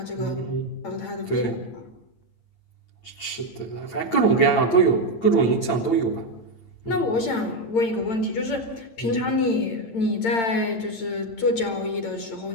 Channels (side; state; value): right; late; 8.8 ms